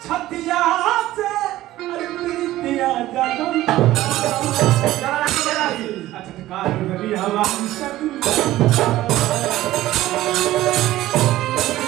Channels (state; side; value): quieter; left; 15.5 dB